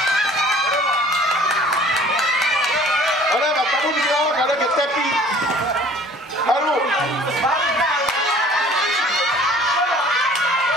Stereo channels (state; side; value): normal; both; correlation 0.50